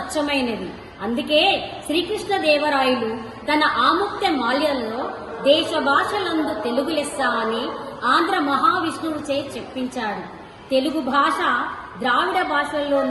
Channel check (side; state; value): both; identical; correlation 1.00